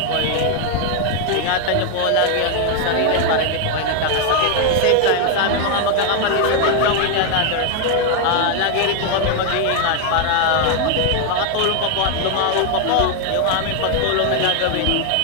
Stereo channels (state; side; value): different; both; correlation 0.00